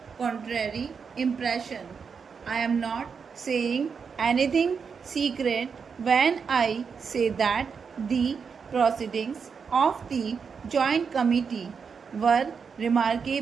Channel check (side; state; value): left; quieter; 6.0 dB